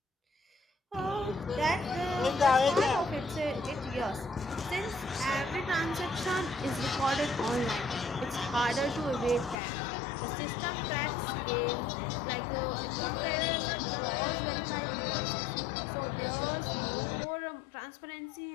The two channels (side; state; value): right; drops out; at 9.6 s